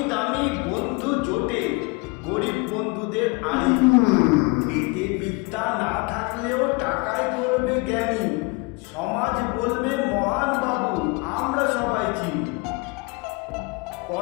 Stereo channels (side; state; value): right; quieter; 28.0 dB